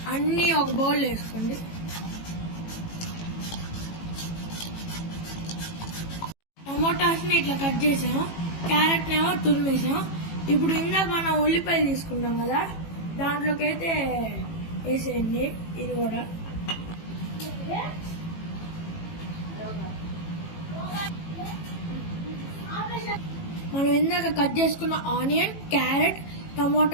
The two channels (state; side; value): late; right; 18 ms